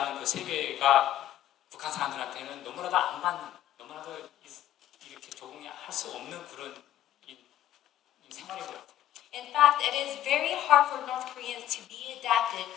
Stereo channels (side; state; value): right; quieter; 12.6 dB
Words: 그 세계가 북한 사람들한테는 너무나도 너무나도 이렇게 적응이 할 수 없는 그런 생활인 것 같아요. In fact, it is very hard for North Koreans to be adapted